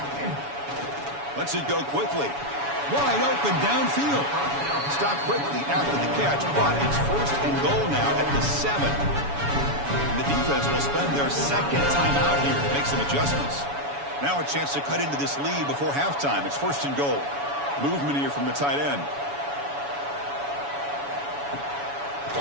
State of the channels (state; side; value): late; left; 7.1 ms